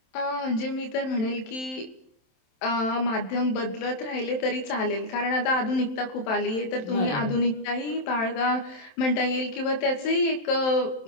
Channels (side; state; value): right; late; 27 ms